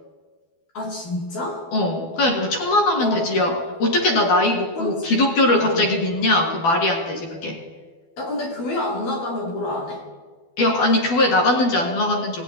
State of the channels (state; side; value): late; right; 12 ms